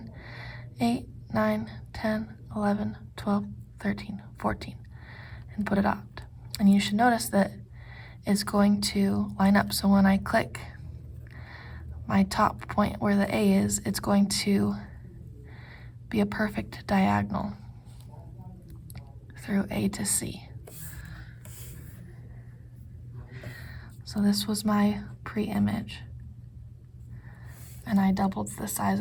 8, 9, 10, 11, 12, 13, 14, and put it out. And you should notice that it's going to line up. So when I click my top point where the A is, it's going to be a perfect diagonal through A to C. So this was my pre-image, and I doubled the size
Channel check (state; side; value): identical; both; correlation 1.00